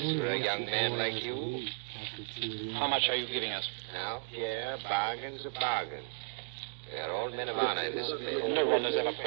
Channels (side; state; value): left; silent; digital silence